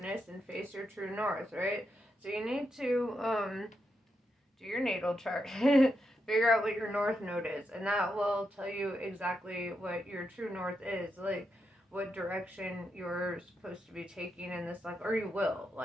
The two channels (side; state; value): both; normal; correlation 0.84